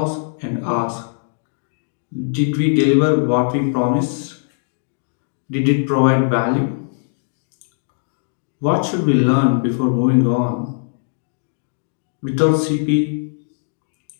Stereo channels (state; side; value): silent; right; digital silence